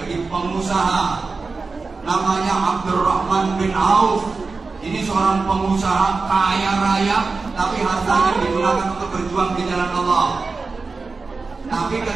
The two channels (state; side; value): quieter; left; 4.1 dB